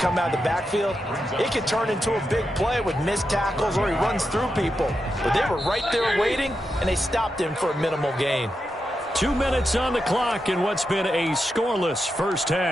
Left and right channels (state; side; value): normal; both; correlation 0.87